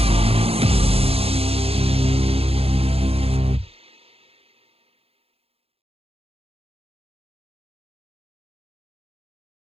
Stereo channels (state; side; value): late; left; 0.29 ms